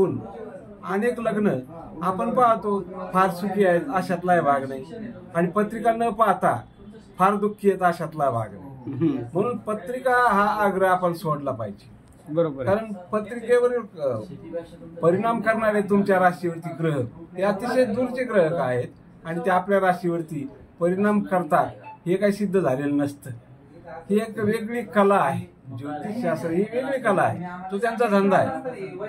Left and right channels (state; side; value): identical; both; correlation 1.00